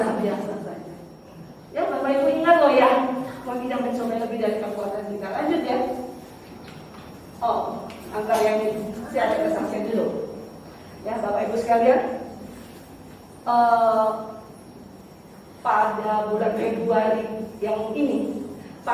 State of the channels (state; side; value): identical; both; correlation 1.00